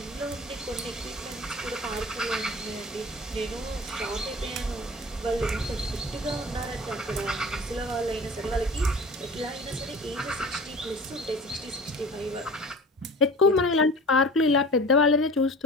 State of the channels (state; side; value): normal; both; correlation 0.40